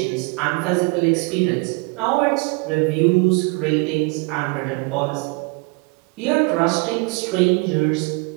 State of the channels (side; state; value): left; quieter; 29.2 dB